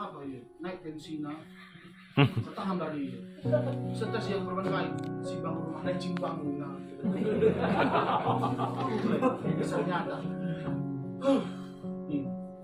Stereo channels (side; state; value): both; identical; correlation 1.00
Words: ya? Naik tensinya. Setahan dari stres yang berbagai si bangun rumah dan cimbang nah. Misalnya ada. Nih,